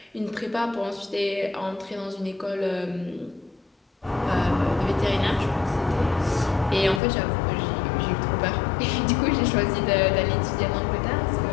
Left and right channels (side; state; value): right; drops out; at 7.0 s